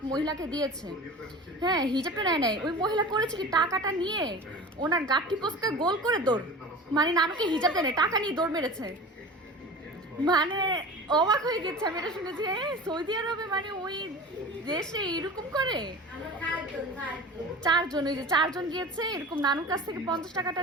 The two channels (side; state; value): both; normal; correlation 0.35